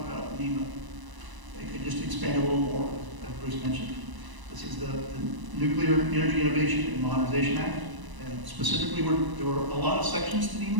about NEMA. Just to expand a little more, as Bruce mentioned. This is the Nuclear Energy Innovation and Modernization Act, and specifically there were a lot of sections to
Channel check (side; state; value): left; late; 1.0 ms